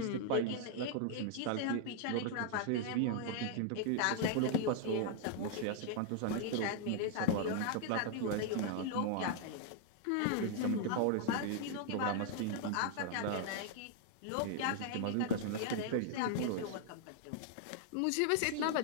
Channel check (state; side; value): different; both; correlation 0.00